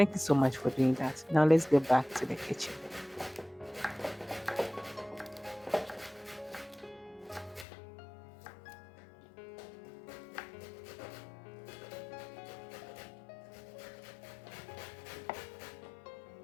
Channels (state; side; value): drops out; right; at 7.7 s